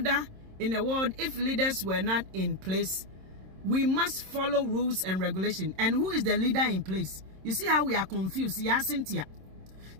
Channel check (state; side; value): late; left; 26 ms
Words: in the world if leaders were not in place. We must follow rules and regulation. And who is the leader in place? You see how we are confused. Yeah, Cynthia.